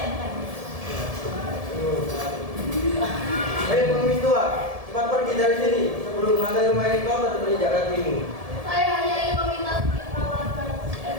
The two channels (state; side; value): late; left; 1.7 ms